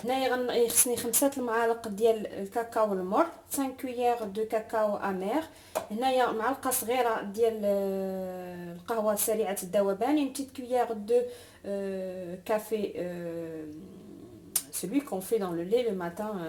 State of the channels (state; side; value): identical; both; correlation 1.00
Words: هنايا خصني 5 المعالق ديال الكاكاو المر، 5 كويير دو كاكاو امير. هنايا معلقه صغيره ديال القهوه سريعه الذوبان، une petite cuillère de café, celui qu'on fait dans le lait le matin,